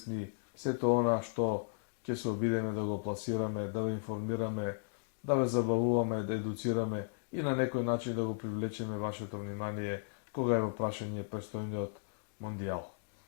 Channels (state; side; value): silent; right; digital silence